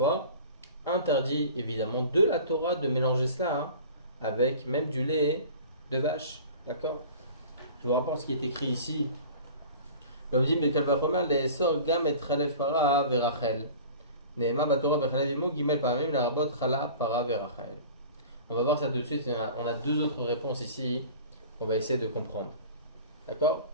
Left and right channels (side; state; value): both; inverted; correlation -0.41